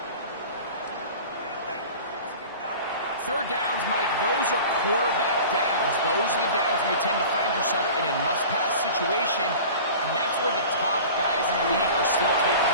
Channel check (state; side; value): inverted; both; correlation -0.39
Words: third downs, Mike, those are quarterback downs. Those are the downs where you tend to find yourself in a must-pass situation, and that's where the top guys in the league are still